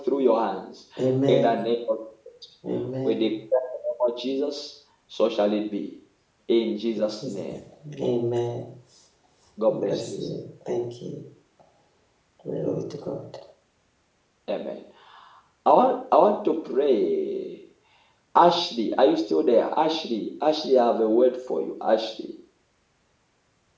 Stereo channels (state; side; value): identical; both; correlation 1.00